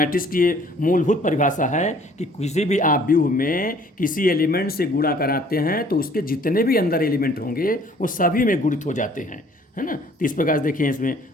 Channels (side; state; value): both; normal; correlation 0.57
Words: की ये मूलभूत परिभाषा है कि किसी भी आप व्यूह में किसी एलिमेंट से गुणा कराते हैं तो उसके जितने भी अंदर एलिमेंट होंगे वो सभी में गुणित हो जाते हैं, है ना। तो इस प्रकार से देखिए इसमें